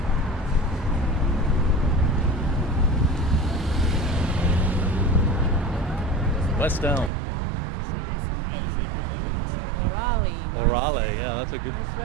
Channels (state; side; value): drops out; left; at 7.1 s